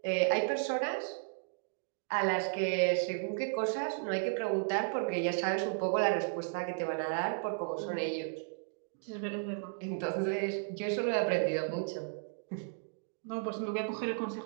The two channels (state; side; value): silent; left; digital silence